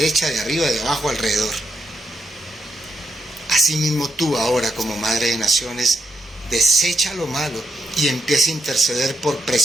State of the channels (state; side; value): normal; both; correlation 0.81